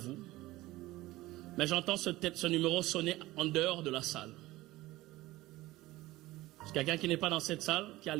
Mais j'entends ce numéro sonner en dehors de la salle. C'est quelqu'un qui n'est pas dans cette salle, qui est à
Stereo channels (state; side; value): quieter; left; 18.2 dB